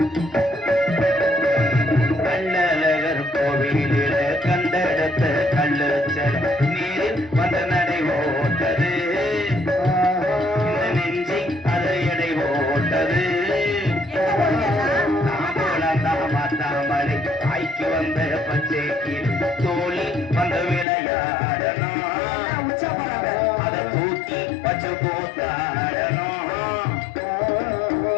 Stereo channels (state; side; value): drops out; right; at 20.9 s